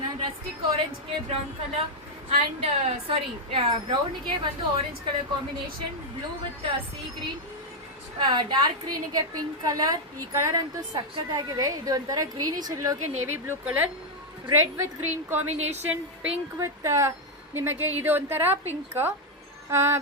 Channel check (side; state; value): both; normal; correlation 0.00